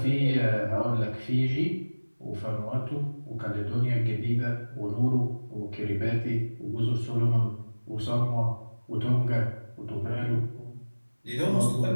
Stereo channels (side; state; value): both; inverted; correlation -1.00